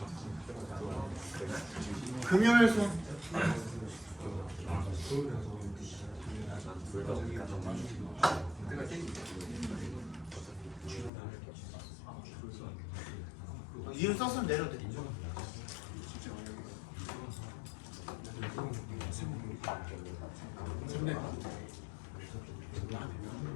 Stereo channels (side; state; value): right; drops out; at 11.1 s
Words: 금요일 손. 이유 썼으면 내려도 돼.